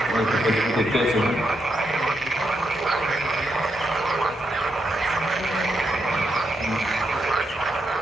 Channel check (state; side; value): normal; both; correlation 0.81